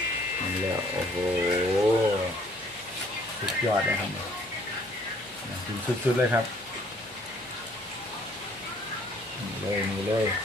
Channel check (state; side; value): noise; left; hum, 28 dB below the sound